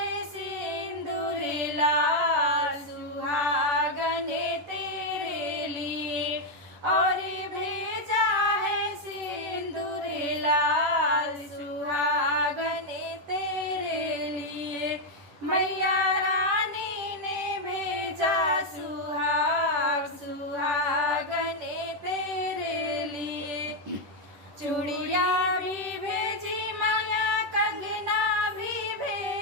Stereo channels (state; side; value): late; left; 10 ms